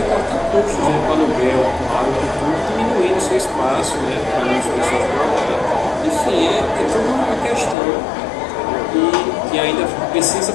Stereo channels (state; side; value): drops out; right; at 7.8 s